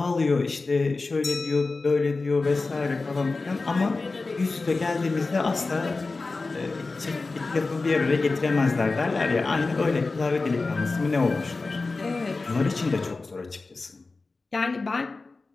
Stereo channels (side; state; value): right; quieter; 3.7 dB